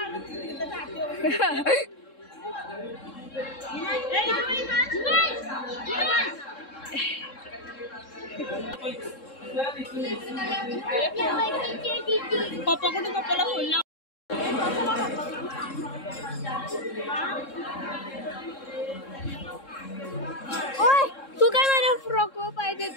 पप्पा कुठे पप्पाला फोन लाव. ओय तू काय माझ्या फ्रॉक वर पाय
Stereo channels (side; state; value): right; late; 3.7 ms